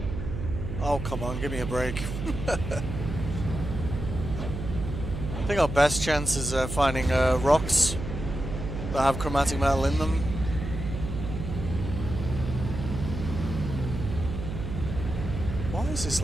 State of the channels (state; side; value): noise; right; hum, 6 dB below the sound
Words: Oh, come on, give me a break. I think our best chance is finding rocks that have chromatic metal in them. Why is this